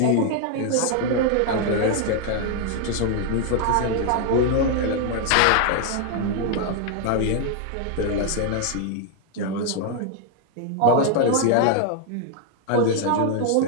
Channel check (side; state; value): both; different; correlation 0.00